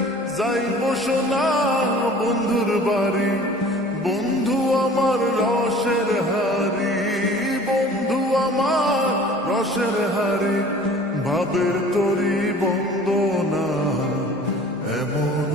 যাইব সোনা বন্ধুর বাড়ি। বন্ধু আমার রসের হারি, বন্ধু আমার রসের হারি, ভাবের তরি বন্দনা এমন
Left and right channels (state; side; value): normal; both; correlation 0.46